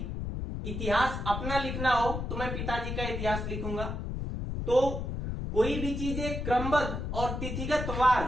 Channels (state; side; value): noise; left; rumble, 4 dB below the sound